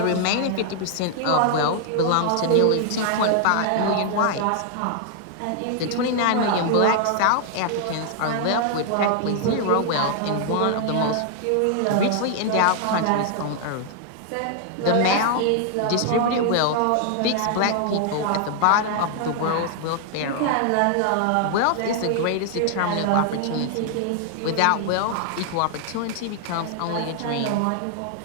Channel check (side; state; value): both; different; correlation 0.00